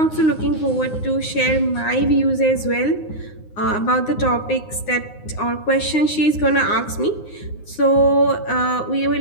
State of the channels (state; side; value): late; right; 9.6 ms